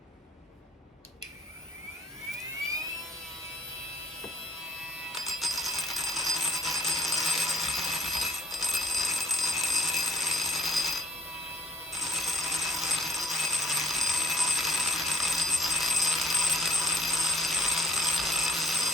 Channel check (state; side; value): normal; both; correlation 0.53